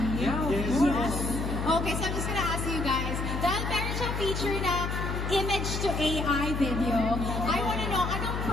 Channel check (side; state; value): left; noise; hum, 2 dB below the sound